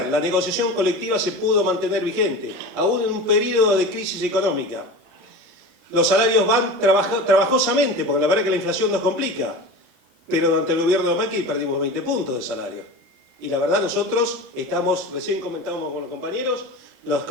la negociación colectiva se pudo mantener vigente, aún en un periodo de crisis económica. Los salarios van trabajosamente, porque la verdad es que la inflación nos complica, pero durante el gobierno de Macri perdimos 20 puntos de salario. Y la verdad nosotros estamos, recién comentábamos con los compañeros,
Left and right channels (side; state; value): left; late; 37 ms